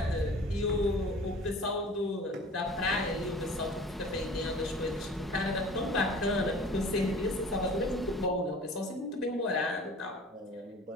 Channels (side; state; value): both; normal; correlation 0.44